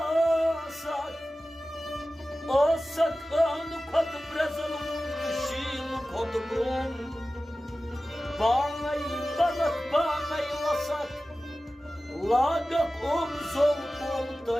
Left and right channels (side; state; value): both; normal; correlation 0.95